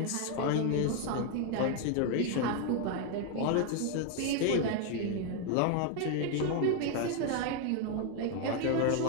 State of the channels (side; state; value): both; different; correlation 0.01